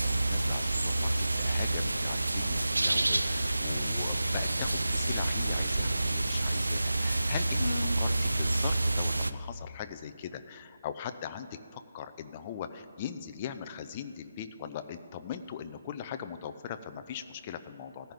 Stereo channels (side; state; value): both; inverted; correlation -0.91